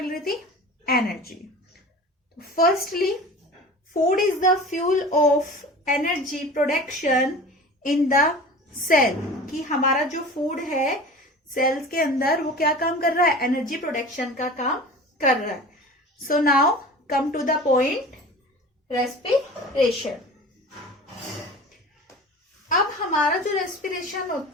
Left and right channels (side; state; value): both; normal; correlation 0.37